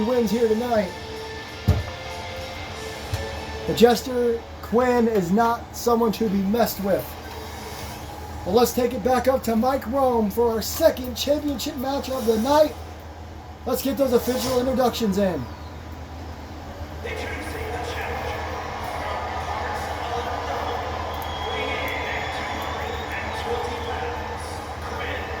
wins here tonight. The Jester Quinn is not someone to be messed with. Well, let's take it back up to Mike Rome for our second championship match of the night. Let's get those official introductions in. Introducing the challenger from parts unknown, weighing in at 220 pounds, Quinn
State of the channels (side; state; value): both; identical; correlation 1.00